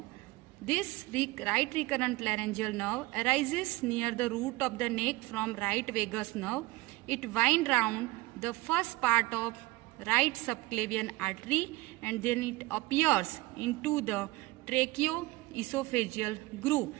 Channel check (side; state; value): left; quieter; 21.2 dB